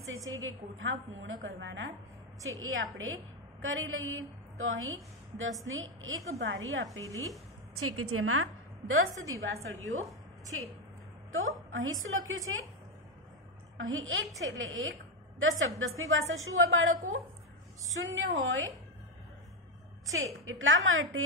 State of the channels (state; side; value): normal; both; correlation 0.06